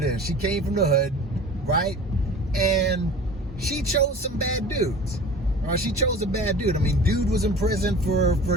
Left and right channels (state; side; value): normal; both; correlation 0.40